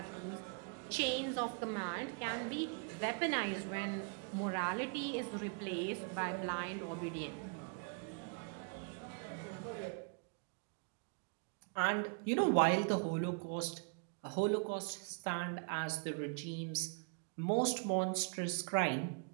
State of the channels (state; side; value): quieter; left; 38.8 dB